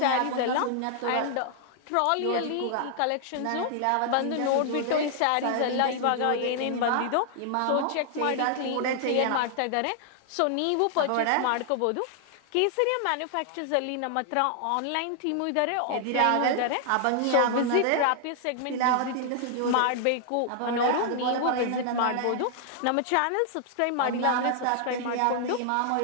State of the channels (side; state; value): both; different; correlation 0.00